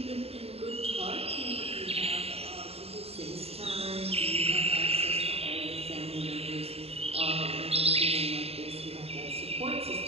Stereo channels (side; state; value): left; late; 0.29 ms